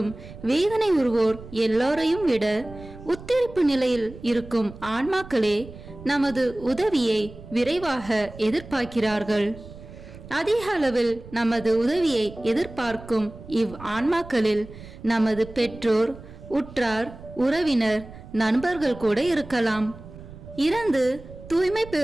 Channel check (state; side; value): noise; right; rumble, 16 dB below the sound